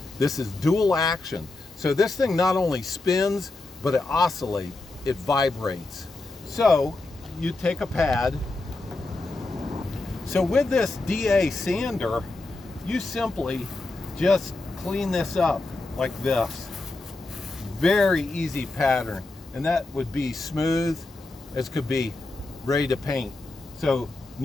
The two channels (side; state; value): right; quieter; 3.2 dB